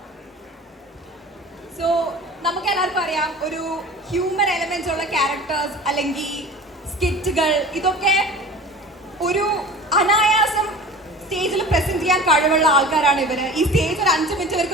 So നമുക്ക് എല്ലാവർക്കും അറിയാം, ഒരു ഹ്യൂമൻ എലമെന്റ്സ് ഉള്ള ക്യാരക്ടേഴ്സ് അല്ലെങ്കിൽ സ്കിറ്റുകൾ, ഇതൊക്കെ ഒരു അനായാസം സ്റ്റേജിൽ പ്രസന്റ് ചെയ്യാൻ കഴിവുള്ള ആൾക്കാരാണ് ഇവര്. ഈ സ്റ്റേജ് ഒരു 5 മിനിറ്റ്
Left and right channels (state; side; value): normal; both; correlation 0.38